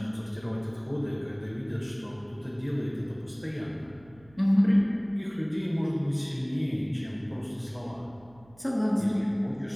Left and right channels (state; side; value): noise; right; hum, 26 dB below the sound